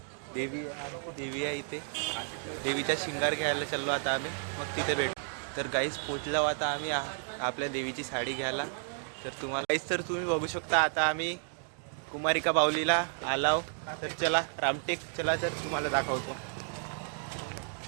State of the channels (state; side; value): silent; left; 56 dB below the other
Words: देवी आहे इथे। देवीचा शिंगार घ्यायला चाललो आता आम्ही, मग तिथे भेटू। तर गाईस पोचलो आता आम्ही आपल्या देवीची साडी घ्यायला। तर तुम्हाला गाईस तर तुम्ही बघू शकता, आता आम्ही कुमारिका बाहुलीला आलो। तर चला रामटेक चला, तर तुम्हाला दाखवतो।